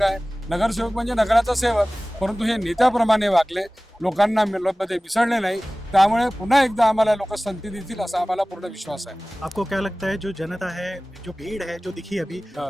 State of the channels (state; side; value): normal; both; correlation 0.98